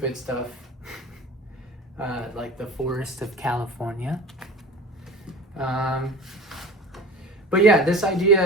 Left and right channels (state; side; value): normal; both; correlation 0.38